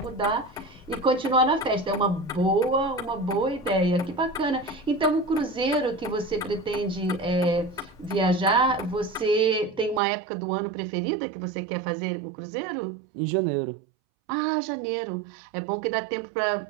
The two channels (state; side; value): drops out; left; at 10.0 s